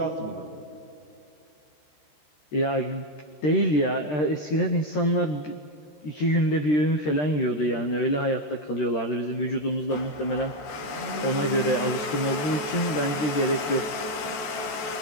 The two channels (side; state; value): right; late; 14 ms